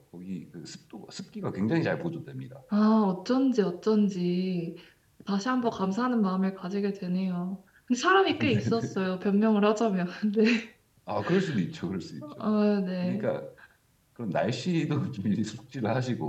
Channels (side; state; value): both; identical; correlation 1.00